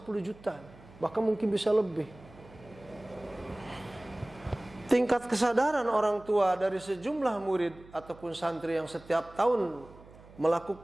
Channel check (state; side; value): noise; right; hum, 21 dB below the sound